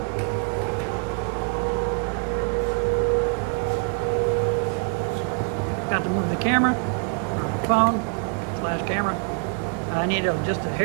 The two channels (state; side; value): quieter; left; 36.4 dB